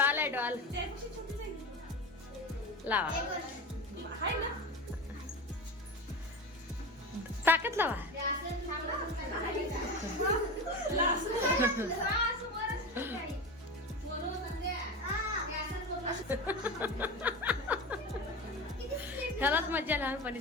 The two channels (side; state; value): both; normal; correlation 0.26